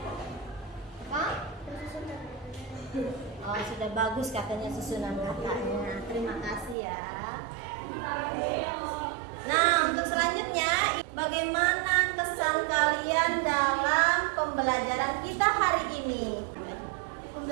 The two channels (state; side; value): drops out; left; at 6.8 s